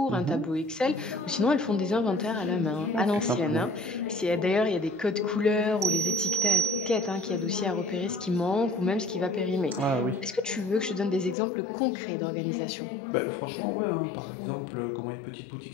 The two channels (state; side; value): drops out; right; at 11.4 s